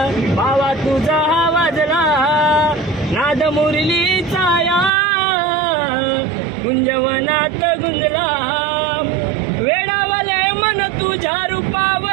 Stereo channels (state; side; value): drops out; left; at 4.9 s